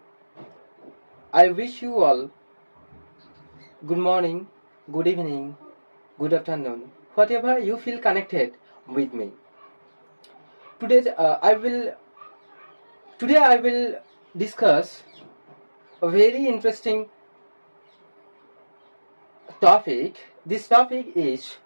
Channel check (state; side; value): inverted; both; correlation -1.00